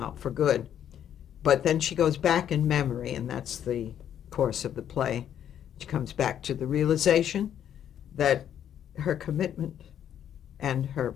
for good. But then she goes back in memory, and that's the course of the play. She comes back to the realization that her commitment and her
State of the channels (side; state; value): right; quieter; 9.8 dB